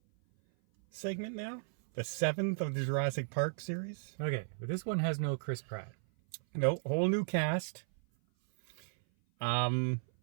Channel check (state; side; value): silent; left; 54 dB below the other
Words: segment now? The seventh of the Jurassic Park series? Okay, but this one has no Chris Pratt. No, whole new cast.